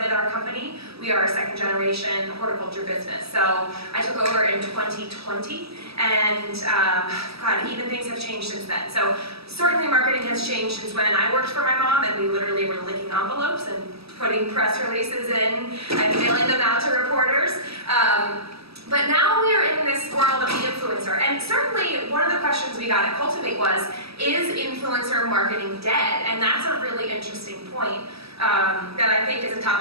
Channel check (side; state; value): left; late; 0.77 ms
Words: our company. We are a second generation horticulture business. So I took over in 2020, and God, even things have changed since then. So certainly marketing has changed since when I worked for my mom, and we literally were licking envelopes and putting press releases in and mailing them out to reporters. But now we are in this world of the influencer, and certainly one of the questions we got at Cultivate was, is influencer marketing dead? And that's a really interesting point that I think is a